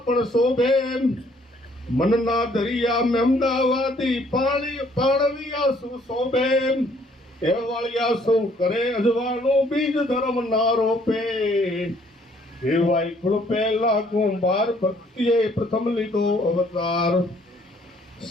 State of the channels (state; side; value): normal; both; correlation 0.63